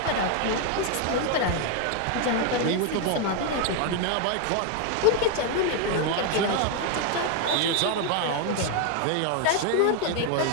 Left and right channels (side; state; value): both; different; correlation 0.01